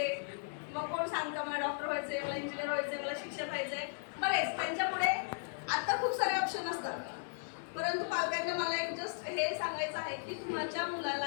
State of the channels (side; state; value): right; silent; 54 dB below the other